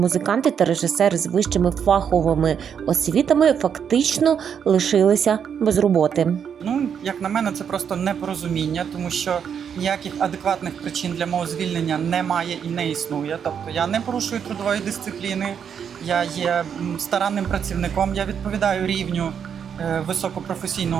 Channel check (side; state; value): left; quieter; 7.7 dB